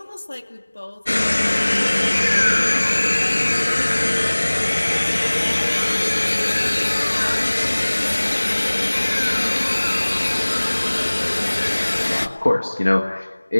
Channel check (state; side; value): inverted; both; correlation -1.00